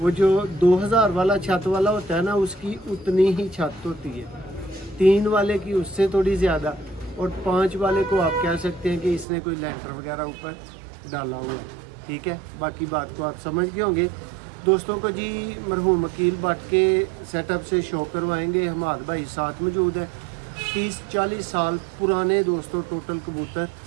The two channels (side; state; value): left; drops out; at 9.2 s